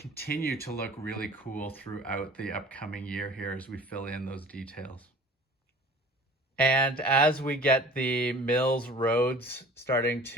to look really cool throughout the upcoming year here as we fill in those details. And as we get the MILS roads starting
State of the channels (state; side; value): normal; both; correlation 0.45